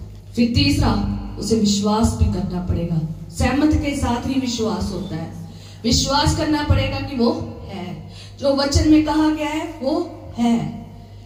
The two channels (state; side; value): identical; both; correlation 1.00